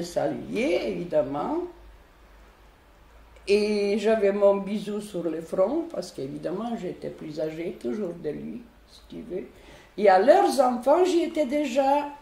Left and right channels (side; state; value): both; identical; correlation 1.00